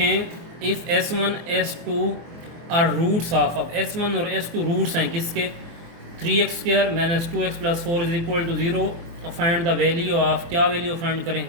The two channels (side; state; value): left; late; 24 ms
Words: if S1 S2 are roots of, अब S1 और S2 रूट्स हैं किसके, 3x square minus 2x plus 4 is equal to zero. Find the value of, क्या वैल्यू फाइंड